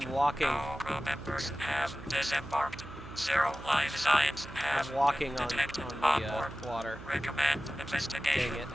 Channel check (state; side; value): noise; right; hum, 15 dB below the sound